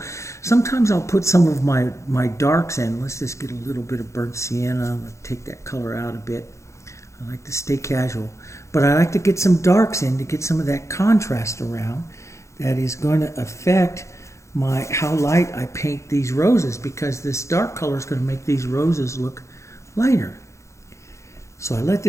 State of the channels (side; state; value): right; late; 0.14 ms